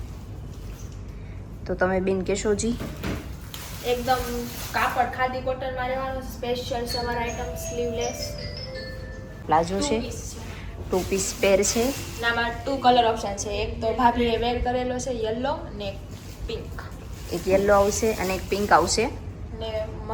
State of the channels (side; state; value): both; identical; correlation 1.00